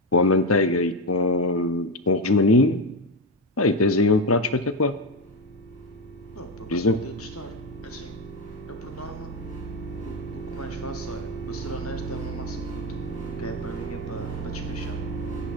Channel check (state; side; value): normal; both; correlation 0.12